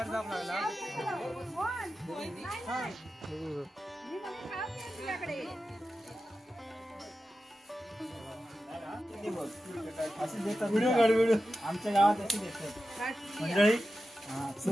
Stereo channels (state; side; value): normal; both; correlation 0.92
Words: जाऊ लागला. आमच्या गावात अशी देतात मंडळी.